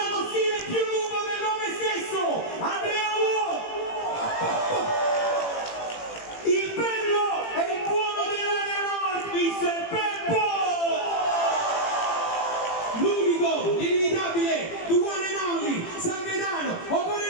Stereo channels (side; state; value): right; late; 18 ms